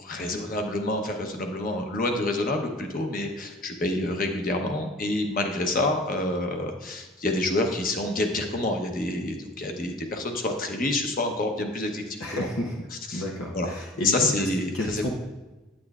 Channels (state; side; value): normal; both; correlation 0.44